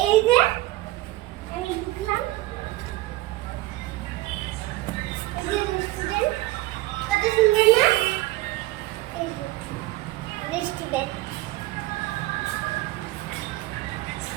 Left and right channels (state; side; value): quieter; left; 18.2 dB